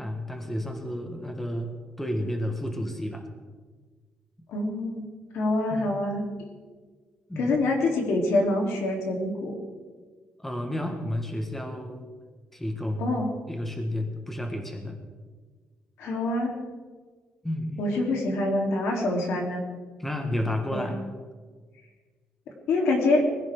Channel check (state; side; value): normal; both; correlation 0.76